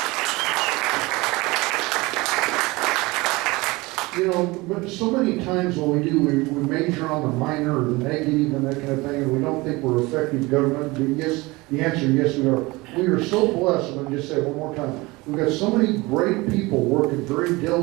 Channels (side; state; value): left; quieter; 22.6 dB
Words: But so many times what we do, we major on the minor or the negative and that kind of thing, and we don't think we're effective government. But yes, the answer, yes, we are. We are so blessed, and I'll just say it one more time. We've got so many great people working very